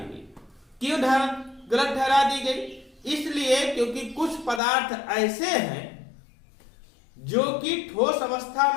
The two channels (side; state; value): right; drops out; at 4.6 s